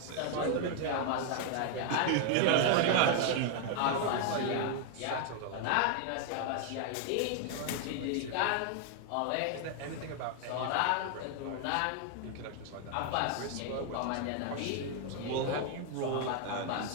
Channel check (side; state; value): both; different; correlation 0.00